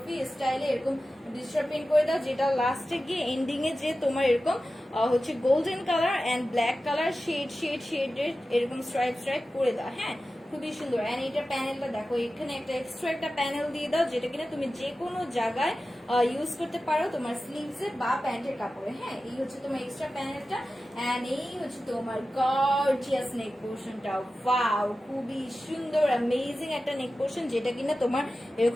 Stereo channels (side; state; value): both; normal; correlation 0.94